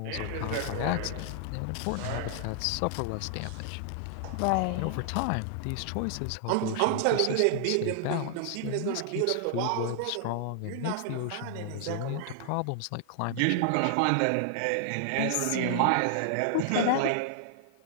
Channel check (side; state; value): both; different; correlation -0.01